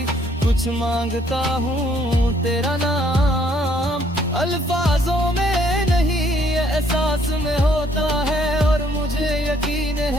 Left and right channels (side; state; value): both; normal; correlation 0.66